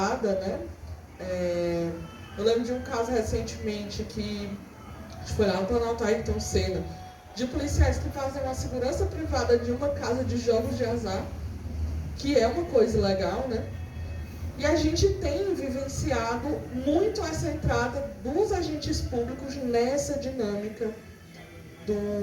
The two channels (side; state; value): both; identical; correlation 1.00